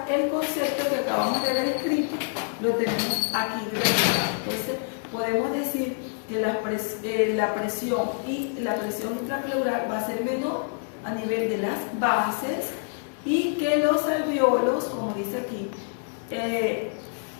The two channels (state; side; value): silent; right; 61 dB below the other